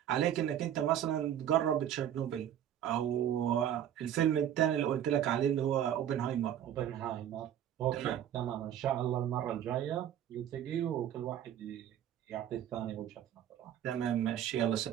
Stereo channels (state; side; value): quieter; left; 10.5 dB